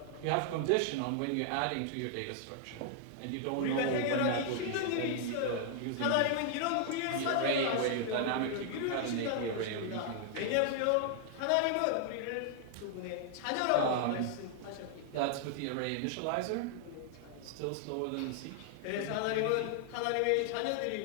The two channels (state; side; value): different; both; correlation 0.00